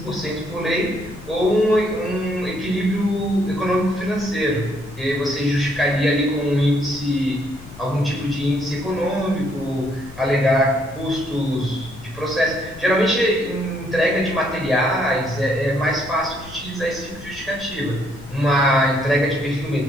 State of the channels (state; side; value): noise; left; rumble, 18 dB below the sound